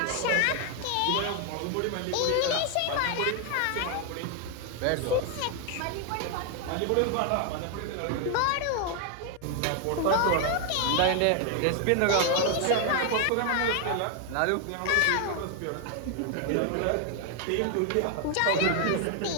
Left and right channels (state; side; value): different; both; correlation 0.01